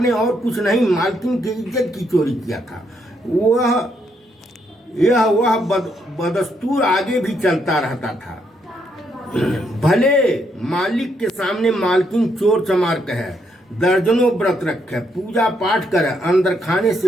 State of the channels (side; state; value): both; normal; correlation 0.75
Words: और कुछ नहीं, मालकिन की इज्जत की चोरी किया था। वह बदस्तूर आगे भी चलता रहता था। भले मालिक के सामने मालकिन चोर चमार कहे, दर्जनों व्रत रखे, पूजा पाठ करे, अंदर खाने